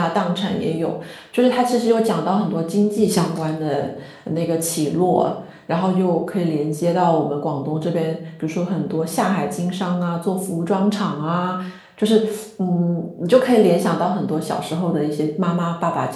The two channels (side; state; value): both; identical; correlation 1.00